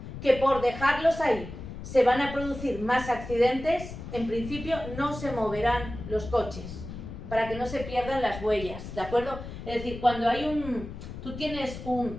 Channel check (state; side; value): noise; left; rumble, 10 dB below the sound